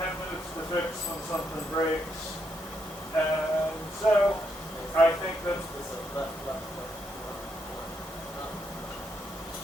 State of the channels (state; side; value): normal; both; correlation 0.78